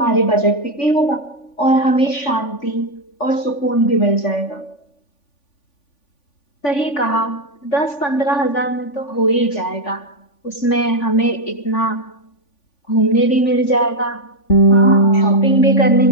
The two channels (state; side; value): late; right; 3.5 ms